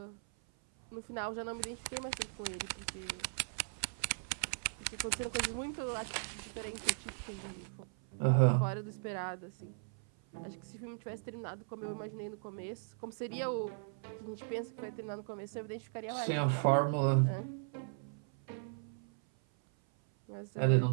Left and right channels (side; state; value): left; silent; 52 dB below the other